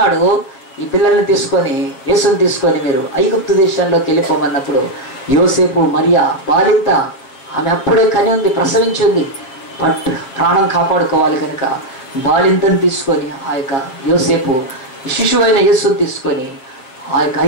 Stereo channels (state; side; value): late; right; 7.5 ms